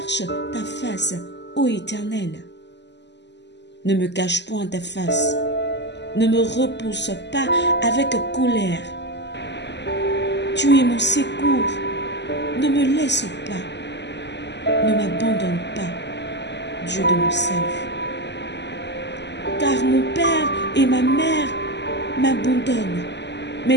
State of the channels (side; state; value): right; late; 0.51 ms